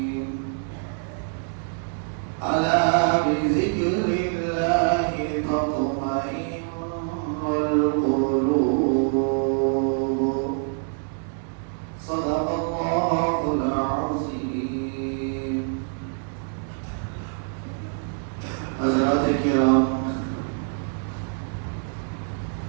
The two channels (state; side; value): silent; left; 61 dB below the other